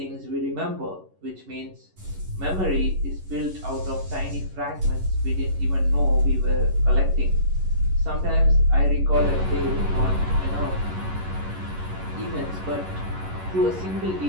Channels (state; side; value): late; left; 11 ms